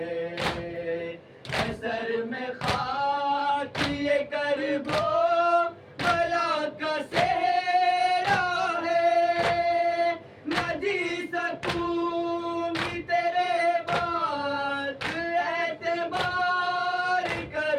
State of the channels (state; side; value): identical; both; correlation 1.00